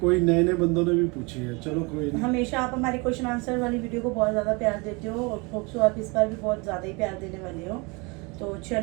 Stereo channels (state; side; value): quieter; left; 28.5 dB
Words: नए नए बंदों ने भी पूछे हैं। चलो कोई नहीं। हमेशा आप हमारे क्वेश्चन आंसर वाली वीडियो को बहुत ज्यादा प्यार देते हो और होप सो आप इस बार भी बहुत ज्यादा ही प्यार देने वाले हो। तो